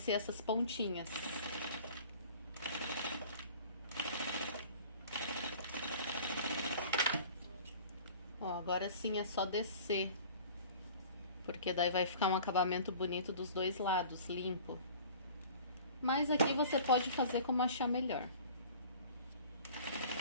essas pontinhas. Ó, agora sim é só descer, porque daí vai ficar um acabamento bonito dos dois lados, limpo. Mas aqui você pode fazer como achar melhor.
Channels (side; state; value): both; inverted; correlation -0.45